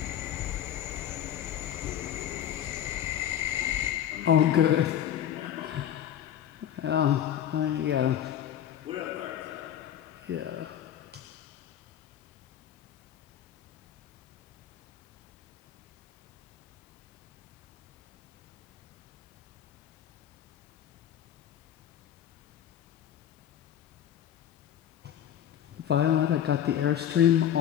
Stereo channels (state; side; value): quieter; right; 10.3 dB